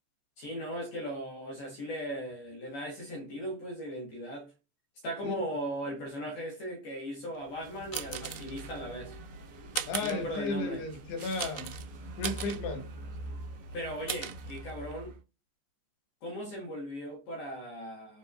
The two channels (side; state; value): right; late; 14 ms